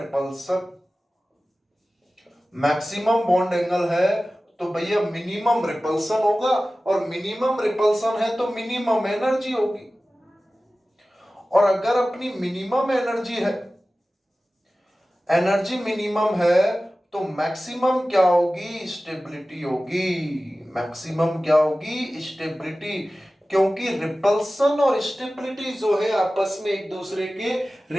मैक्सिमम बॉन्ड एंगल है तो भैया मिनिमम रिपल्सन होगा, और मिनिमम रिपल्सन है तो मिनिमम एनर्जी होगी। और अगर अपनी मिनिमम एनर्जी है, एनर्जी मिनिमम है, तो मैक्सिमम क्या होगी, स्टेबिलिटी होगी। मैक्सिमम क्या होगी, स्टेबिलिटी, क्योंकि रिपल्सन और स्टेबिलिटी जो है आपस में एक दूसरे के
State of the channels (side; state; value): both; normal; correlation 0.96